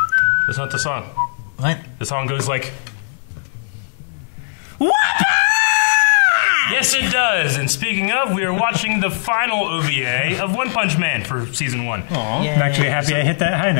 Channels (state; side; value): silent; right; 66 dB below the other